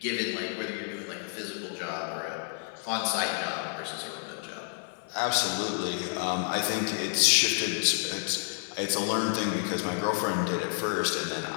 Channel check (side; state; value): right; silent; 58 dB below the other